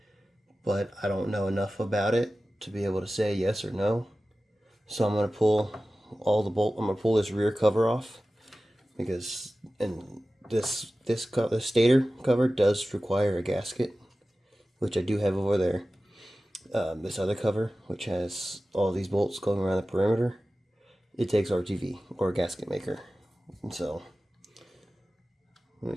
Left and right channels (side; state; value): both; normal; correlation 0.96